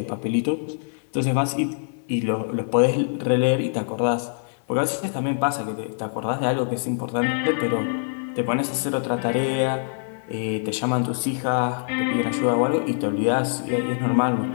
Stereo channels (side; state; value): right; silent; 63 dB below the other